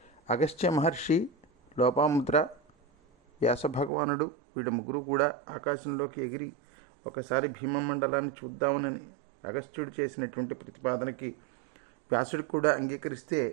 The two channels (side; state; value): left; drops out; at 3.9 s